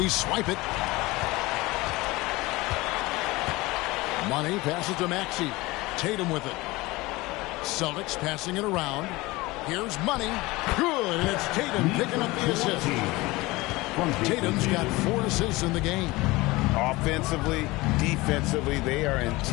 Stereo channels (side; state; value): right; quieter; 21.3 dB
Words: swipe it. Money passes to Maxey. Tatum with it. Celtics passing it around. Here's Money. Good. And it's Tatum picking up the assist. Tatum's got 4 assists in the game. Offensively, defensively, they are in